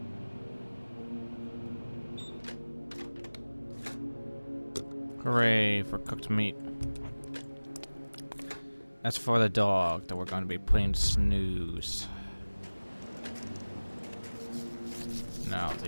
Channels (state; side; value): inverted; both; correlation -1.00